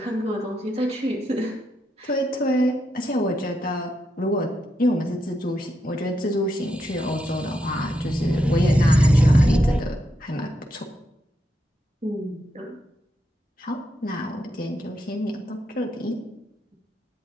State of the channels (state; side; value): normal; both; correlation 0.82